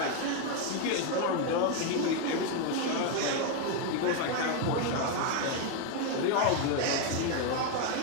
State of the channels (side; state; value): both; different; correlation 0.01